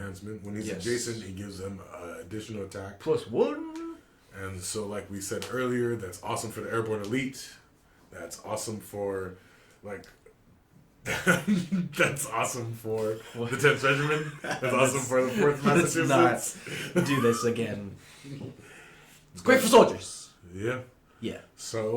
When he's Yes. adjacent, he gives them additional attack. +1. And so, like we said earlier, that's awesome for the airborne elite. That's awesome for, that's awesome for the 10th Regiment. That's awesome for the 4th Massachusetts. Let's not do this again. It's great for soldiers. Yeah. Yeah.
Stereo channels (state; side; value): identical; both; correlation 1.00